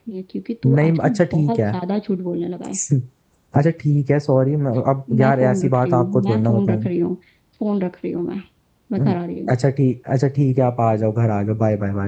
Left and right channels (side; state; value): both; identical; correlation 1.00